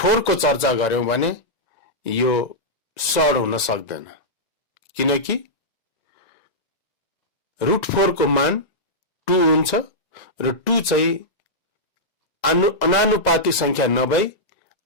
को चर्चा गर्यौं भने यो सड हुन सक्दैन, किनकि √4 को मान 2 हुन्छ र 2 चाहिँ अनानुपातिक संख्या नभई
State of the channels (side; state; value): right; late; 2.0 ms